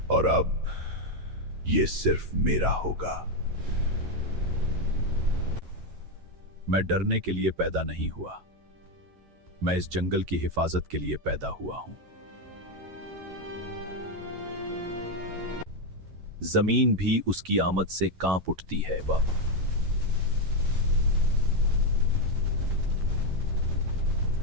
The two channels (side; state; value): left; late; 11 ms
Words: और अब ये सिर्फ मेरा होगा। मैं डरने के लिए पैदा नहीं हुआ, मैं इस जंगल की हिफाजत के लिए पैदा हुआ हूं। जमीन भी उसकी आमद से कांप उठती है बाबा।